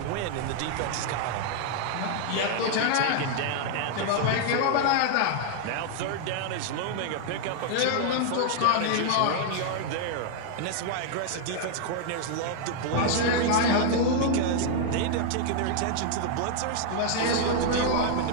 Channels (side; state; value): both; different; correlation 0.00